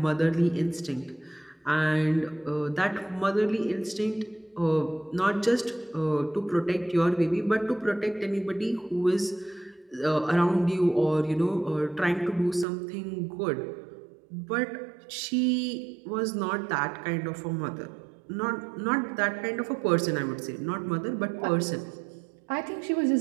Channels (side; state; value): left; drops out; at 12.7 s